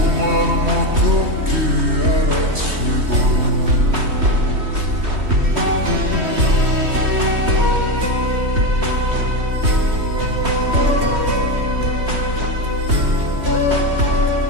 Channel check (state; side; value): late; left; 3.2 ms